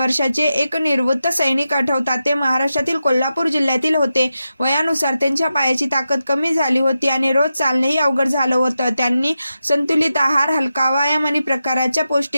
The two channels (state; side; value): inverted; both; correlation -0.89